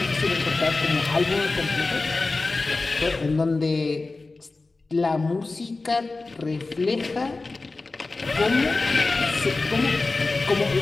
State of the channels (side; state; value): right; quieter; 3.5 dB